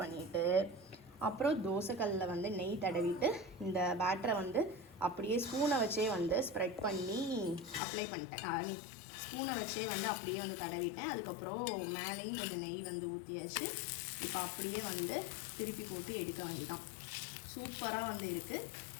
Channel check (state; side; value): drops out; right; at 7.8 s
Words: அப்புறம் தோசைக்கல்லில் வந்து நெய் தடவிட்டு இந்த பேட்டரை வந்து அப்படியே ஸ்பூனை வச்சே வந்து ஸ்ப்ரெட் பண்ணி அப்ளை பண்ணிட்டேன். ஐ மீன் ஸ்பூனை வச்சே வந்து அப்படியே வந்து தடவிட்டேன். அதுக்கப்புறம் மேலேயும் கொஞ்சம் நெய் வந்து ஊற்றியாச்சு. இப்போ அப்படியே வந்து திருப்பி போட்டு எடுக்க வேண்டியதான். சூப்பராக வந்து இருக்குது.